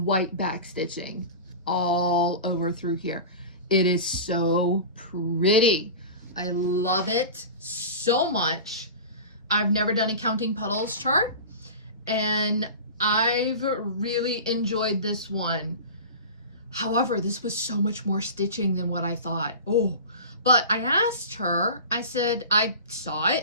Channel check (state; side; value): inverted; both; correlation -0.32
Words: back stitching all over through here. It is so pretty. I love it so much. I've never done a Counting Puddles chart, and I've really enjoyed this one. However, this was so much more stitching than what I thought. Oh, but I asked her, I said, I saw